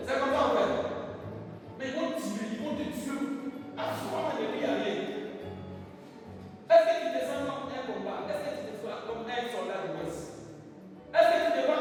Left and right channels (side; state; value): both; identical; correlation 1.00